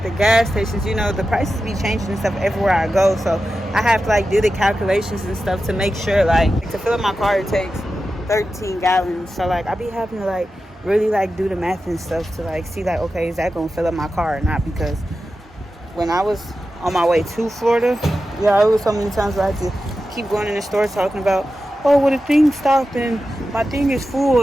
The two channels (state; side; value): normal; both; correlation 0.92